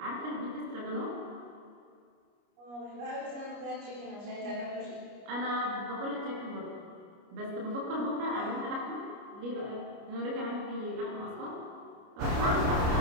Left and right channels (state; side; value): late; left; 29 ms